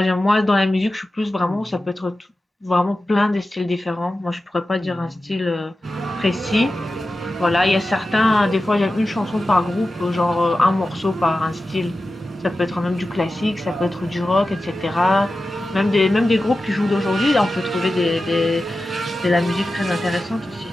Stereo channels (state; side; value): normal; both; correlation 0.93